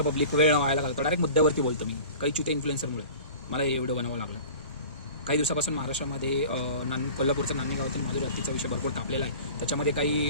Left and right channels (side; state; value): both; inverted; correlation -0.40